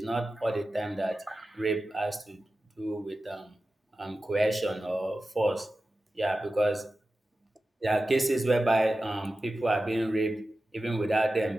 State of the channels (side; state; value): both; normal; correlation 0.94